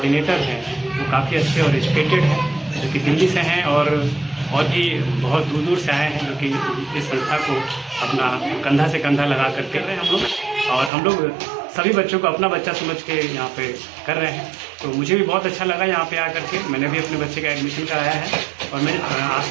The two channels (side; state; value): left; drops out; at 10.9 s